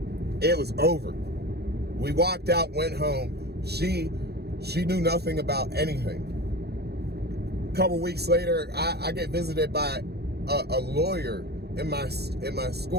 It was over. We walked out, went home. She knew nothing about anything. A couple weeks later, I get visited by a lawyer in my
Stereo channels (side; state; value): left; late; 0.47 ms